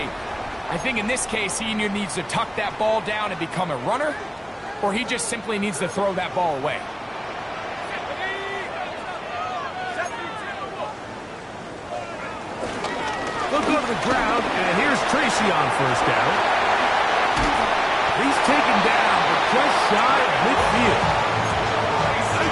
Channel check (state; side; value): identical; both; correlation 1.00